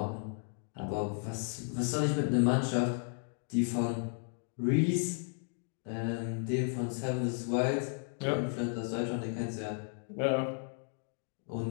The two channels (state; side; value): silent; right; 55 dB below the other